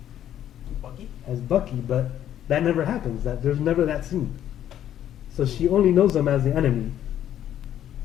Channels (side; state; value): right; quieter; 11.0 dB